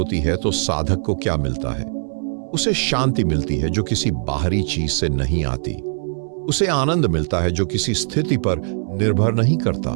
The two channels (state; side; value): silent; left; digital silence